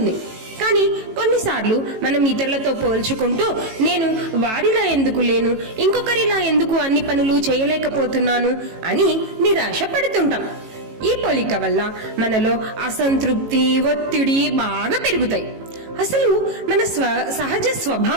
కానీ కొన్నిసార్లు మనం ఇతరులతో పోల్చుకుంటూ నేను వారిలా ఎందుకు లేను, ఇంకొకరిలా ఎందుకు అన్ని పనులు చేయలేకపోతున్నాను అని నిరాశ పడుతుంటాం. ఈ పోలిక వల్ల మనలో అసంతృప్తి, ఒత్తిడి బాగా పెరుగుతాయి. అసలు మన సహజ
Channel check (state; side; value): late; left; 18 ms